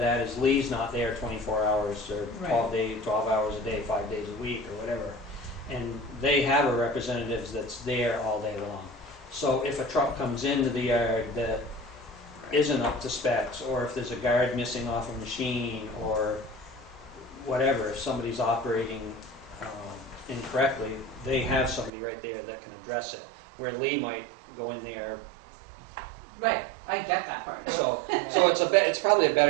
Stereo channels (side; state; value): left; drops out; at 21.9 s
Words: is Lee's not there 24 hours or 12 hours a day, 5 days a week or whatever. And they have a representative that's there all day long. So if a truck comes into the yard that isn't up to specs, or if there's a guard missing off a machine, or whatever, if somebody's operating incorrectly, they have somebody right there that can address it. Where Lee might go in there. Right, I get that part. So it's probably a